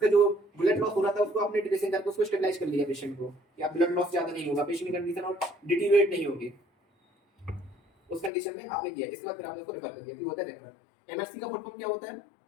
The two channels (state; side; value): drops out; right; at 8.3 s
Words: जो ब्लड लॉस हो रहा था उसको आपने ड्रेसिंग करके उसको स्टेबलाइज कर लिया पेशेंट को कि आप ब्लड लॉस ज्यादा नहीं होगा, पेशेंट की कंडीशन और डिटीरियोरेट नहीं होगी, उस कंडीशन में आपने किया, इसके बाद फिर आपने उसको रेफर कर दिया, ये होता है रेफर। एमएससी का फुल फॉर्म क्या होता है,